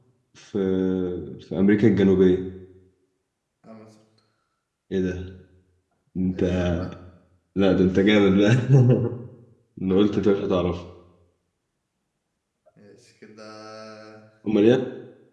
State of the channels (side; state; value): both; identical; correlation 1.00